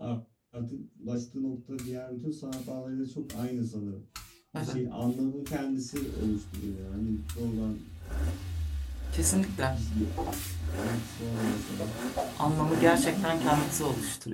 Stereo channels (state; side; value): identical; both; correlation 1.00